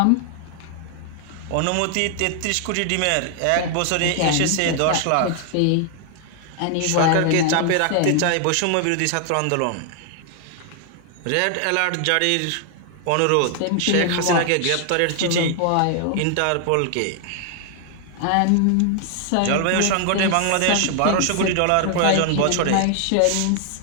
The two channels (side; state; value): both; different; correlation 0.00